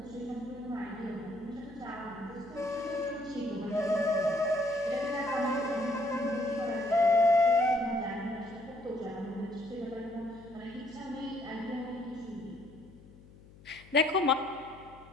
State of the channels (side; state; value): left; noise; hum, 22 dB below the sound